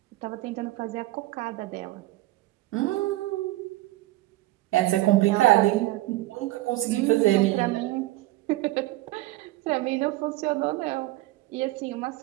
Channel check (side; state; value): left; quieter; 17.7 dB